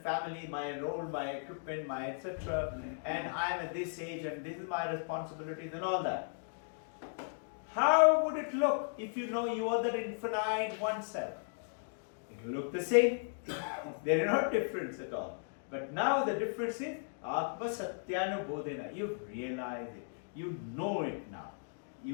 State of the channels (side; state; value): right; silent; digital silence